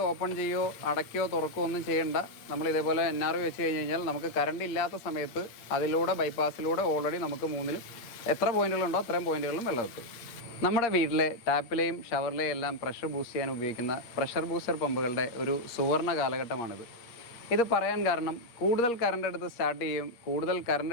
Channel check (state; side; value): late; right; 8.4 ms